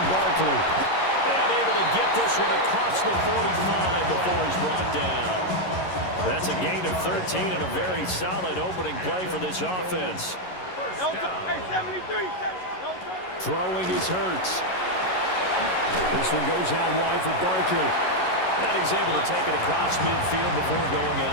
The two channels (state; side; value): late; right; 11 ms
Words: Barkley. And able to get this one across the 45 before he's brought down. That's a gain of 13 and a very solid opening play for this offense. Throwing is Hurts. This one goes out wide for Barkley. And he's able to take it across midfield before going